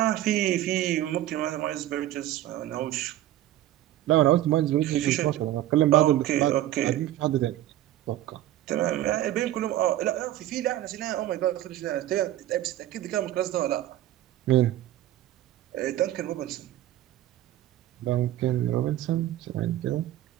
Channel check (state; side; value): quieter; left; 13.7 dB